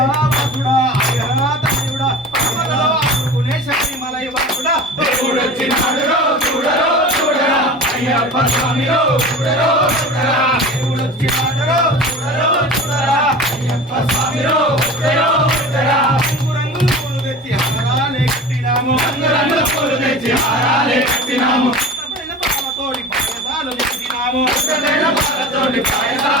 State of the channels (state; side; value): normal; both; correlation 0.35